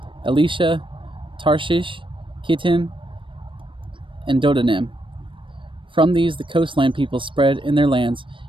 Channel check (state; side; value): late; left; 0.25 ms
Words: Elisha, Tarshish, Kittim, and Dodanim. From these the coastland people spread in their lands,